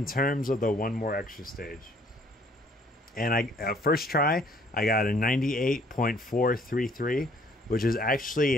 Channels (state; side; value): normal; both; correlation 0.61